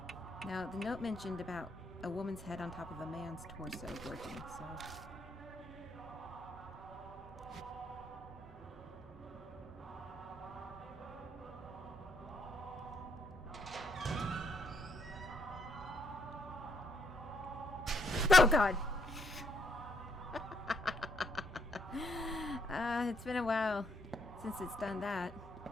Now, the note mentioned about a woman's head on top of a man's torso working, so... Oh, God! It's been a while since it's done that.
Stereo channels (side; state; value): both; normal; correlation 0.73